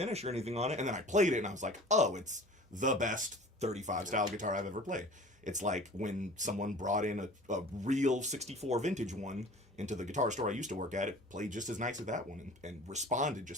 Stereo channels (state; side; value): normal; both; correlation 0.43